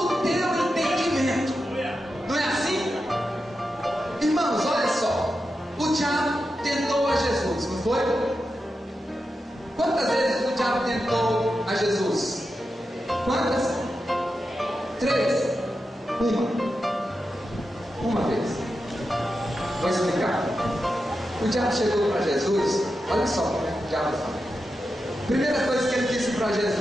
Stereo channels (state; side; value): normal; both; correlation 0.89